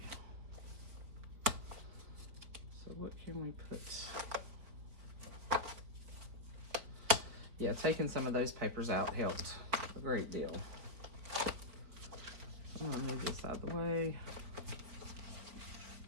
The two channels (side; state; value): left; late; 4.6 ms